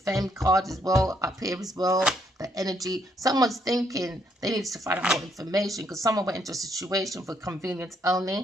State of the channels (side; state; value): both; normal; correlation 0.72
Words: card as well up here as well, the energy. Someone's thinking they need to find out more information because someone went into a situation for convenience